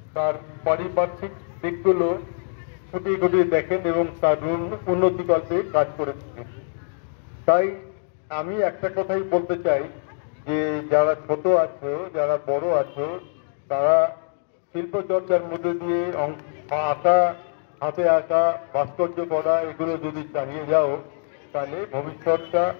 তার পারিপার্শ্বিক দিকগুলো খুঁটিয়ে খুঁটিয়ে দেখেন এবং তার উন্নতিকল্পে কাজ করে থাকেন। তাই আমি একটা কথাই বলতে চাই যে যারা ছোট আছো, যারা বড় আছো, তারা শিল্প চর্চার মধ্যে দিয়ে আঁকা, হাতে আঁকা, ভাস্কর্য করা এগুলো যদি চালিয়ে যাও, তাহলে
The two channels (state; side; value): silent; right; digital silence